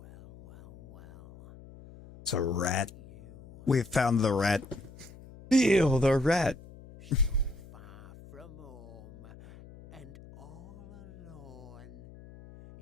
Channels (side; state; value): left; noise; hum, 19 dB below the sound